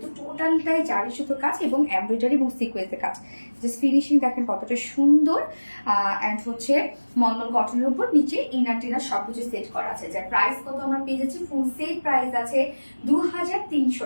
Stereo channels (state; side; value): inverted; both; correlation -1.00